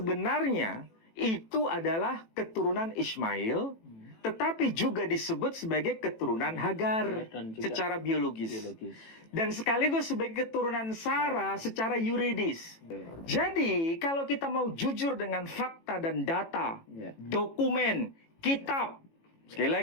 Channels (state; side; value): late; right; 18 ms